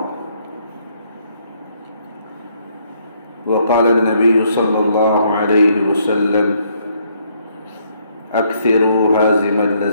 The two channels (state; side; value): inverted; both; correlation -0.70